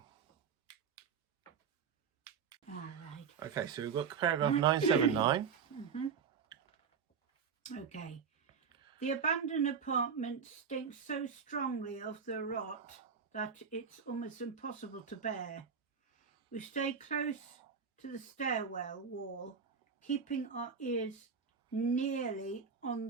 All right. Okay, so we've got paragraph 979. Okay. The abandoned apartment stinks so strongly of the rot that it's almost impossible to bear. We stay close to the stairwell wall, keeping our ears nearly on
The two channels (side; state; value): left; quieter; 6.3 dB